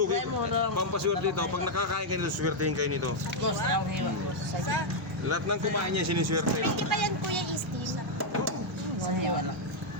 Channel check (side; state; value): both; normal; correlation -0.02